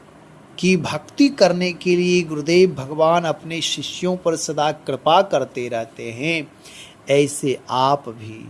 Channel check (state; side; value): identical; both; correlation 1.00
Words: की भक्ति करने के लिए गुरुदेव भगवान अपने शिष्यों पर सदा कृपा करते रहते हैं। ऐसे आप